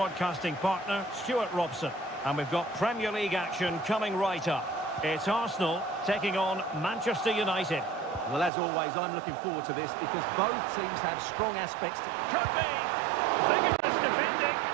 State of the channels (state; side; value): drops out; left; at 8.5 s